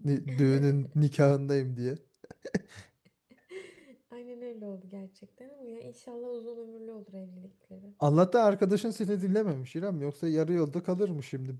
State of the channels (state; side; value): identical; both; correlation 1.00